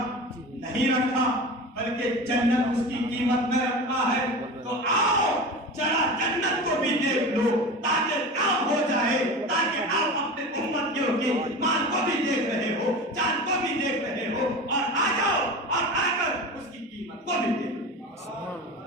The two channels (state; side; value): normal; both; correlation 0.30